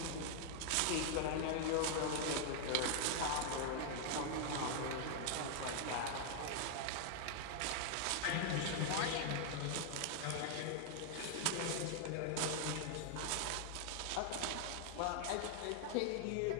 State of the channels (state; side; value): different; both; correlation 0.00